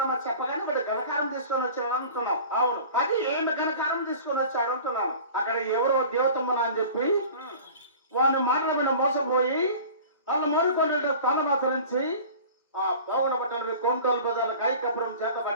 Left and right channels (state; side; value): inverted; both; correlation -0.41